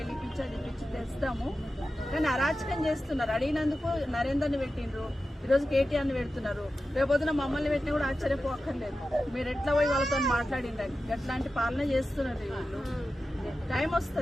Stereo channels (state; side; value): normal; both; correlation 0.93